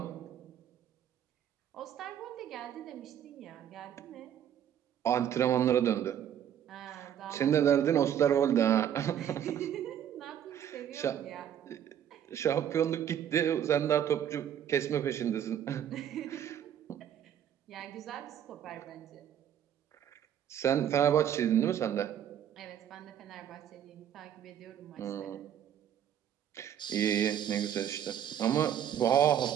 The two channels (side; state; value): left; quieter; 9.8 dB